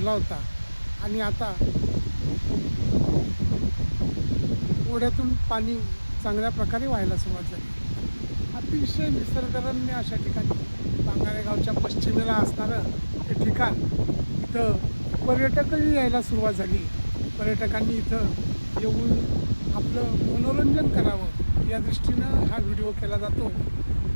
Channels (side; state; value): both; inverted; correlation -1.00